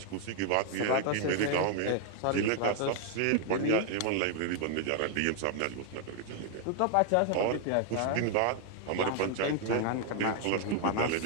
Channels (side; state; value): both; different; correlation 0.00